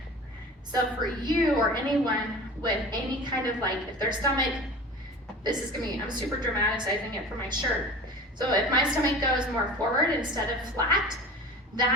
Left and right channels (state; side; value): normal; both; correlation 0.37